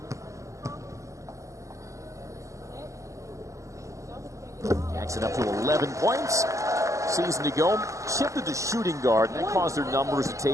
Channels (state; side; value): late; left; 0.15 ms